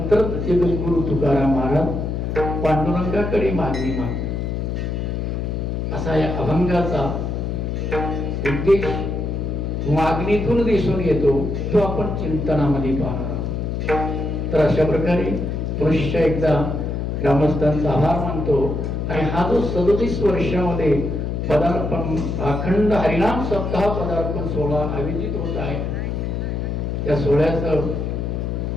जगद्गुरु तुकाराम महाराज पांडुरंगाकडे मागणी माग, असा या अभंगाचा उद्देश मागणीतून दिसून येतो, तो आपण चिंतनामध्ये पाहणार आहोत. तर अशा प्रकारे पुरुष एकदा ग्रामस्थांचा आभार मानतो आणि हा जो 37 वर्षामध्ये पदार्पण अखंड हरिनाम सप्ताह पदार्पण सोहळा आयोजित होत आहे, या सोहळ्याचं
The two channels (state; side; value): noise; left; hum, 2 dB below the sound